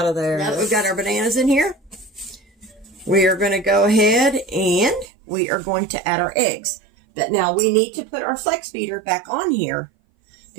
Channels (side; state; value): left; drops out; at 5.1 s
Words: of there. Now that we've got our bananas in here, we are going to go ahead and we are going to add our eggs. But now we need to put our flex beater back on here